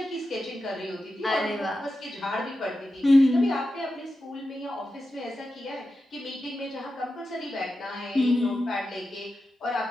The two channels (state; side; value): normal; both; correlation 0.91